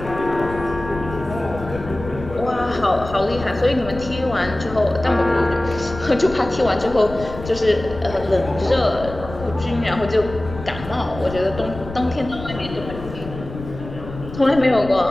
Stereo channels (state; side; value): noise; left; rumble, 12 dB below the sound